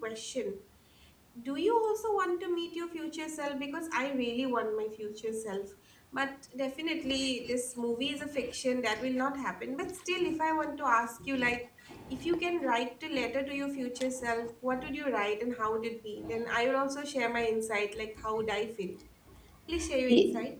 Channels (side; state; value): both; identical; correlation 1.00